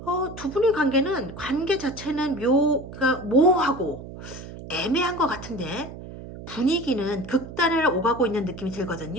두 분의 관계 자체는 그러니까 모호하고 애매한 것 같은데 분위기는 극단을 오가고 있는 느낌이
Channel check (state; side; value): noise; right; hum, 13 dB below the sound